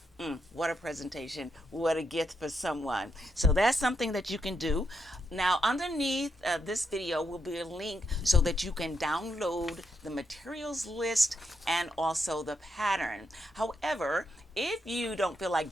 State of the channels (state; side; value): normal; both; correlation 0.81